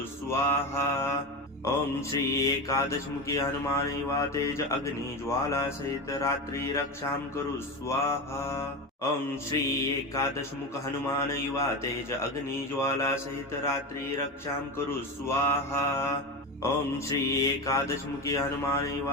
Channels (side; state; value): both; normal; correlation 0.21